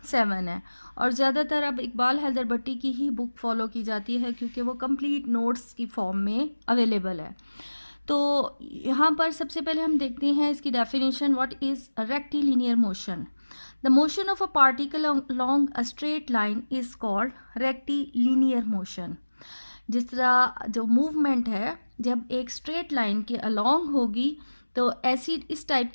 7 है। और ज़्यादातर अब इकबाल हैदर भट्टी की ही बुक फॉलो की जाती है क्योंकि वो कंप्लीट नोट्स की फॉर्म में अवेलेबल है। तो यहाँ पर सबसे पहले हम देखते हैं इसकी definition. What is rectilinear motion? The motion of a particle along a straight line is called rectilinear motion. जिस तरह जो मूवमेंट है जब एक स्ट्रेट लाइन के अलोंग होगी तो ऐसी इस टाइप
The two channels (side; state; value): both; inverted; correlation -1.00